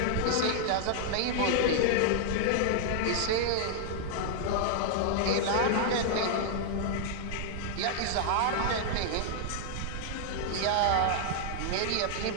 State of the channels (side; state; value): both; different; correlation -0.01